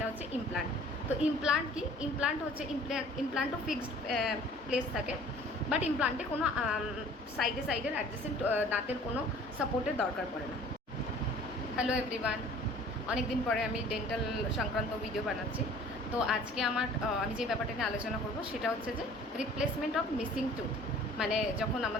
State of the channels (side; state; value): both; normal; correlation 0.50